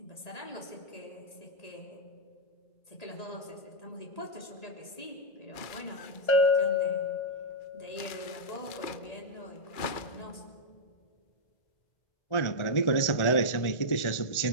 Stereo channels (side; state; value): right; late; 1.4 ms